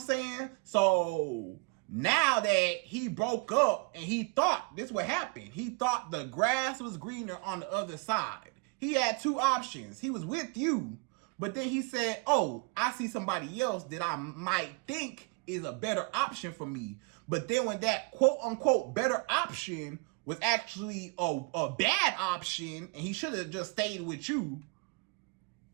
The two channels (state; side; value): quieter; left; 30.1 dB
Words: So now that he broke up and he thought this would happen, he thought the grass was greener on the other side. He had 2 options. He was with you, but then he said, oh, I see somebody else that I might think is a better option for me. But then when that quote unquote better option was actually a bad option and he should have just stayed with you,